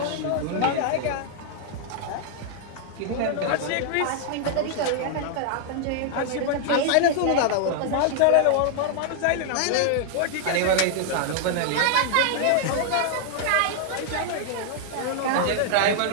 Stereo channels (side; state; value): both; different; correlation 0.00